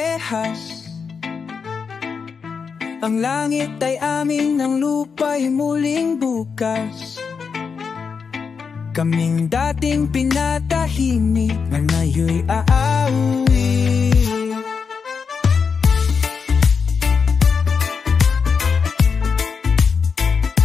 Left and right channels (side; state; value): right; quieter; 5.7 dB